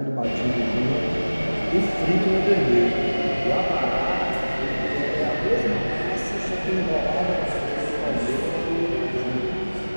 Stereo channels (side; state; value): both; inverted; correlation -1.00